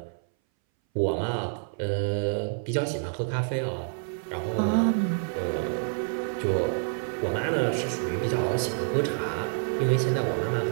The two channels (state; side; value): silent; left; 60 dB below the other